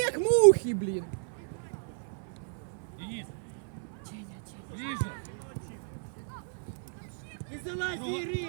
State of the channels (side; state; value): left; silent; digital silence